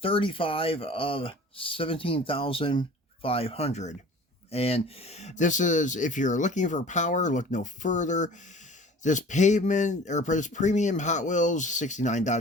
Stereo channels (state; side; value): normal; both; correlation 0.44